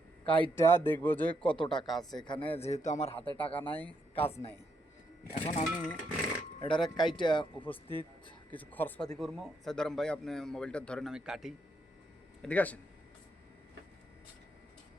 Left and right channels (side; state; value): both; normal; correlation 0.78